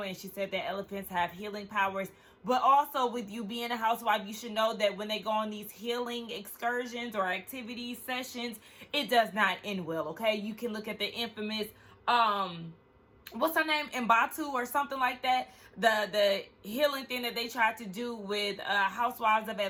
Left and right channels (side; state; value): both; identical; correlation 1.00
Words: And she said that elephants have healing powers. But also, with you being a housewife, you should know that when they go on these healing excursions or activities, sessions, it does not end well, okay? You can look at the infamous, what's her name? Mbatu or something like that. The healing thing that they tried to do with Housewives of